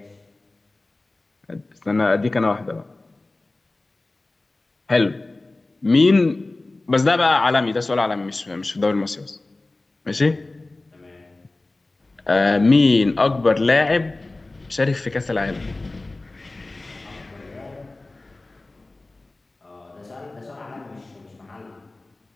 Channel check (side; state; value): right; quieter; 3.0 dB